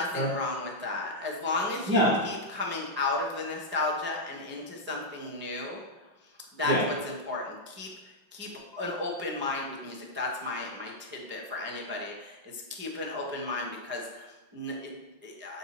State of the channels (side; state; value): left; late; 5.5 ms